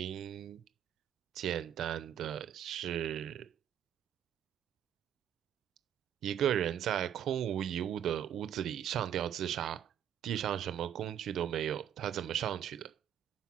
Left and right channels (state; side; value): quieter; left; 10.0 dB